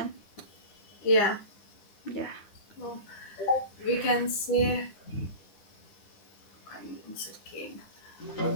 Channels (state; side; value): late; right; 9.9 ms